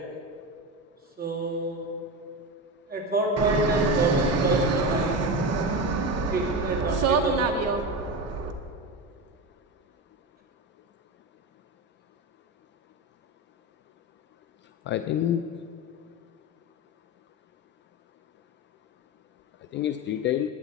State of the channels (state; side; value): normal; both; correlation 0.20